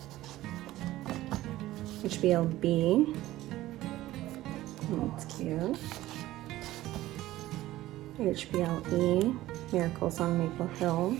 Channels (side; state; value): left; quieter; 15.9 dB